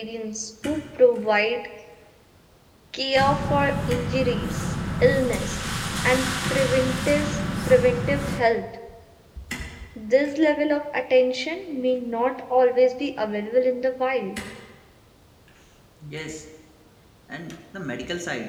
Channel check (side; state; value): both; identical; correlation 1.00